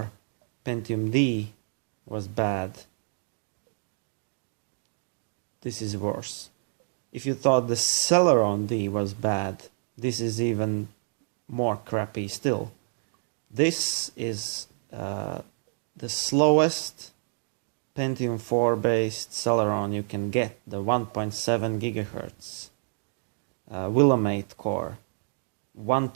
Pentium D was bad, this is worse. If you thought the Celeron D was bad, this is even more crappy still. This is the slowest Pentium 4 based Celeron you can get, the 1.7 gigahertz Willamette core, 1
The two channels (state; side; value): silent; left; digital silence